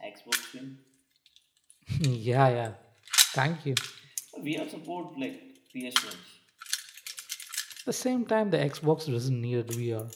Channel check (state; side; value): identical; both; correlation 1.00